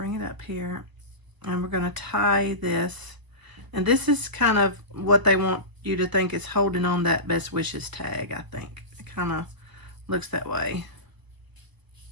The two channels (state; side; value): late; left; 1.0 ms